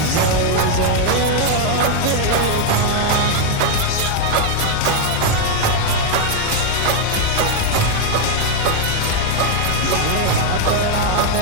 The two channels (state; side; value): different; both; correlation 0.00